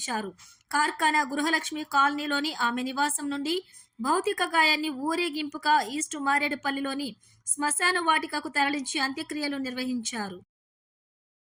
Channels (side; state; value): both; identical; correlation 1.00